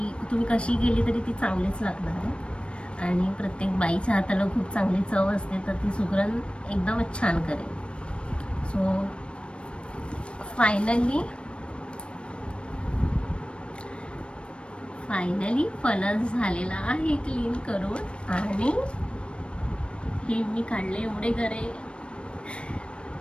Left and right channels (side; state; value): right; late; 0.058 ms